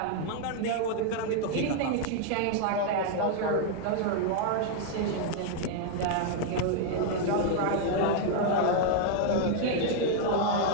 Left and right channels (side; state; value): both; different; correlation 0.00